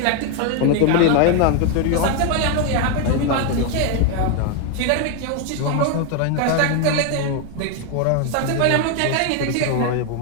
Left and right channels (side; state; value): both; different; correlation 0.01